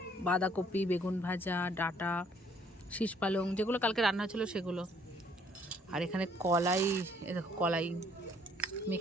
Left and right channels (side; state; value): both; normal; correlation 0.63